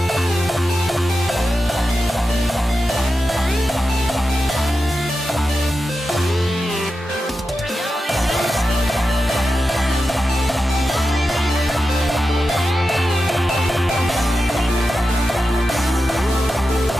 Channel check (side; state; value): both; normal; correlation 0.91